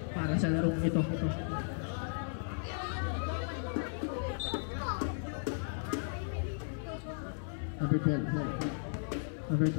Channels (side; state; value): right; silent; 54 dB below the other